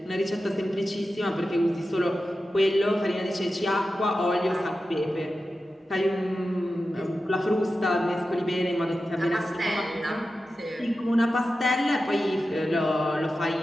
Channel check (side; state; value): both; normal; correlation 0.92